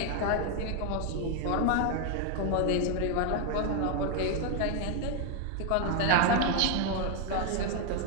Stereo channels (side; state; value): both; different; correlation 0.01